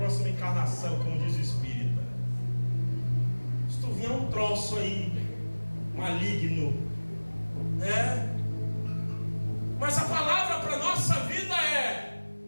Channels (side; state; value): both; inverted; correlation -1.00